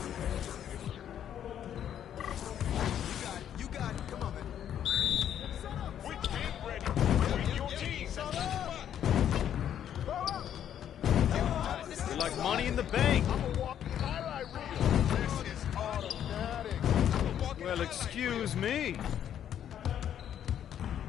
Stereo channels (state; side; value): quieter; right; 9.9 dB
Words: You got it. Come on, man. We get ready. Bring your team. You're like money in the bank. I'm a walking highlight reel. This is automatic. Well, excuse me.